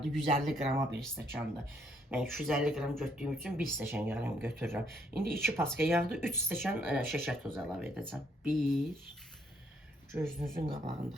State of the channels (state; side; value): normal; both; correlation 0.70